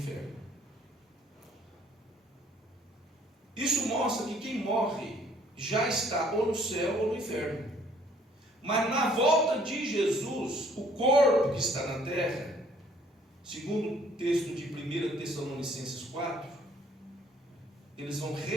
Isso mostra que quem morre já está ou no céu ou no inferno. Mas na volta de Jesus, o corpo que está na terra, segundo o texto de 1 Tessalonicenses 4, eles vão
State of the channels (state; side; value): normal; both; correlation 0.60